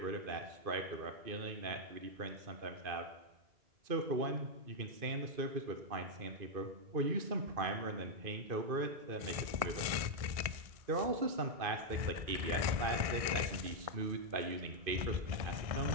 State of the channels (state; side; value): late; left; 1.6 ms